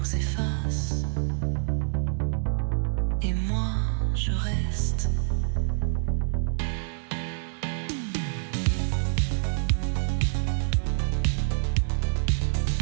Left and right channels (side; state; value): left; silent; 60 dB below the other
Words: s'efface et moi je reste.